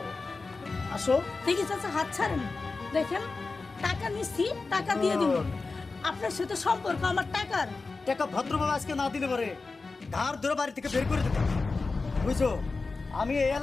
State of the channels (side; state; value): right; quieter; 3.9 dB